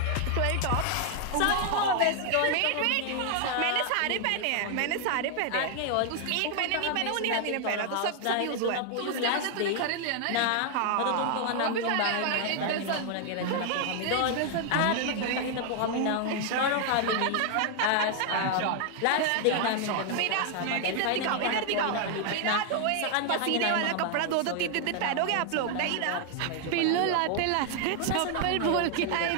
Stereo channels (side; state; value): both; different; correlation 0.00